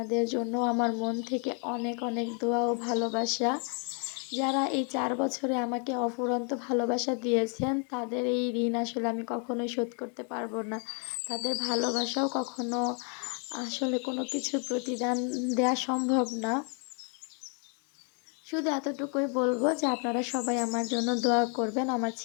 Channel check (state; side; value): quieter; right; 39.1 dB